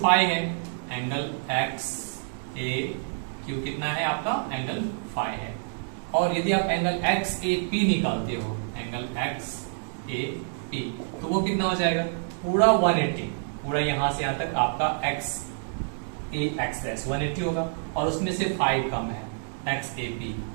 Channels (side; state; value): left; silent; digital silence